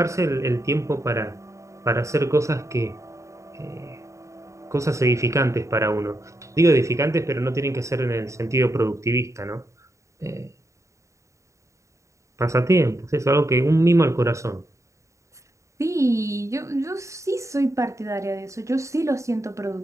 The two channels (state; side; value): late; left; 0.15 ms